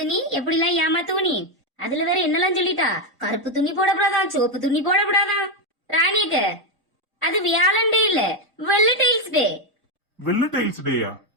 நீ எப்படிலாம் ஏமாத்துவ நீ. அதுல வேற என்னெல்லாம் சொல்லிட்டா. கருப்பு துணி போடப்படாதான், சிவப்பு துணி போடப்படாதான். ராணிக்கு அது வியாழண்டே இல்ல, வெள்ளை டைல்ஸ் டே. வெள்ள டைல்ஸ் டேயா?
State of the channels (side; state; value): both; normal; correlation 0.06